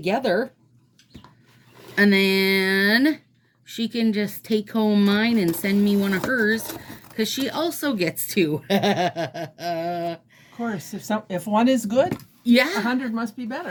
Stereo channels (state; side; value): identical; both; correlation 1.00